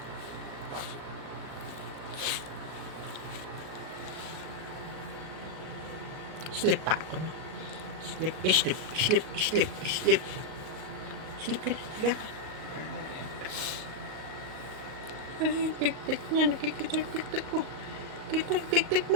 Sleep pa ako na. Sleep. Sleep ka na. Higa ka. Ay, pik-pik niya. Nakikita yung pik-pik mo. Kita yung pik-pik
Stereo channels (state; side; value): late; left; 38 ms